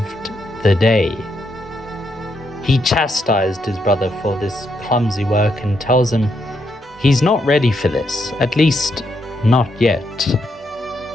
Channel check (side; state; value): both; normal; correlation 0.79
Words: the day. He chastised his brother for this clumsy work and tells him he's not ready for this, at least not yet.